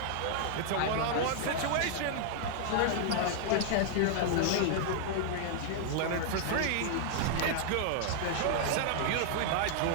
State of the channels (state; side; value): different; both; correlation -0.01